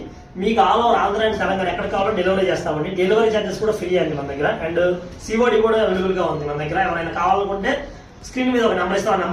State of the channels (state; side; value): identical; both; correlation 1.00